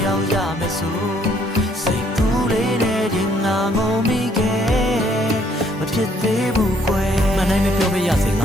ယောက်ရမယ်ဆိုစိတ်ကူးလေးနဲ့တင်ငါငုံမိခဲ့မဖြစ်သေးဘူးကွယ်မနိုင်မပြောပြရစေင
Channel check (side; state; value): both; normal; correlation 0.66